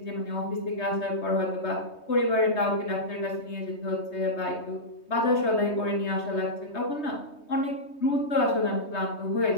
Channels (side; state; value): right; late; 3.2 ms